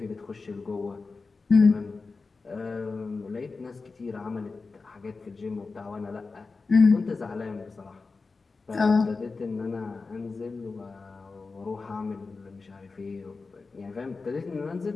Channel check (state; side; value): quieter; right; 4.1 dB